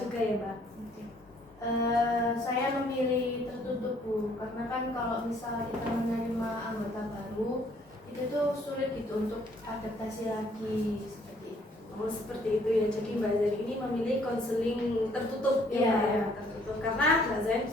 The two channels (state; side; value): normal; both; correlation 0.63